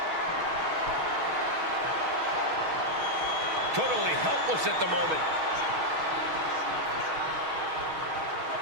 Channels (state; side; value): late; left; 6.3 ms